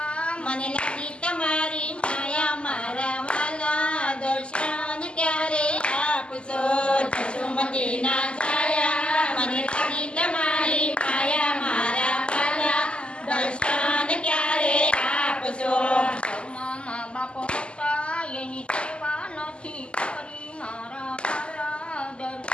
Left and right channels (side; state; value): right; late; 0.052 ms